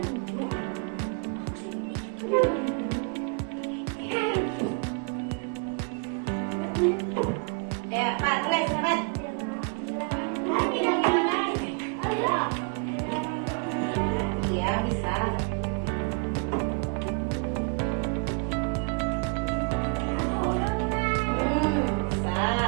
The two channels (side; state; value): left; quieter; 37.4 dB